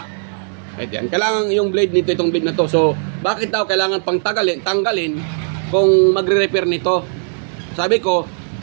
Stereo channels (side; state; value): left; silent; 66 dB below the other